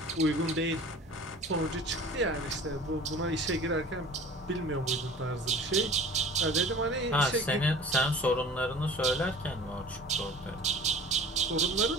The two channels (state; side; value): normal; both; correlation 0.43